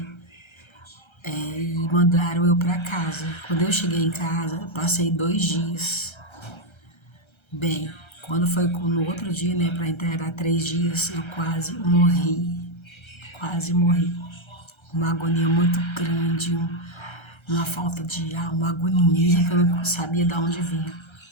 e mandaram eu para casa. Quando eu cheguei em casa, eu passei 2 dias. Bem, quando foi no outro dia, né, para integrar 3 dias, eu quase morri. Quase morri. Uma agonia muito grande, uma falta de ar, uma agonia que eu não sabia de onde vinha.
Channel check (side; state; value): right; late; 1.3 ms